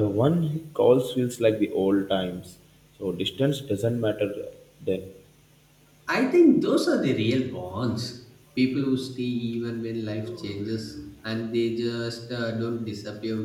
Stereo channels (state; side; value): identical; both; correlation 1.00